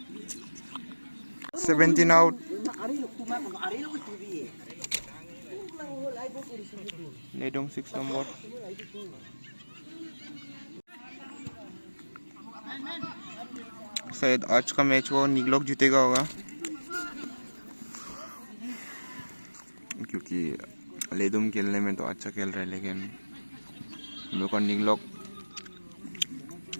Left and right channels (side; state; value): both; inverted; correlation -1.00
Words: 17 out. Ledum 6 number. शायद आज का मैच वो निगलोक जीतेगा होगा, क्योंकि लेडुम खेलने में तो अच्छा खेल रहा है, लेकिन मेरे को निगलोक